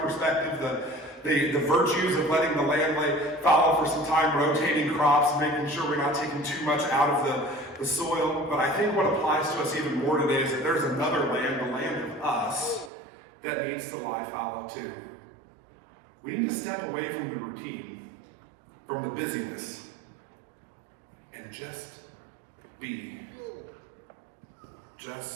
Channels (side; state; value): left; drops out; at 12.9 s